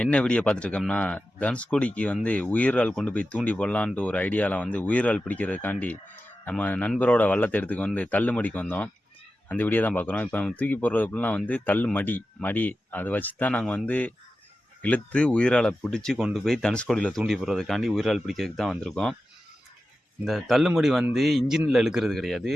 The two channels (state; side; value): normal; both; correlation 0.92